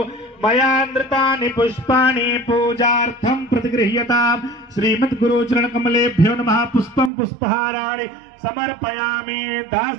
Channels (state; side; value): drops out; left; at 7.1 s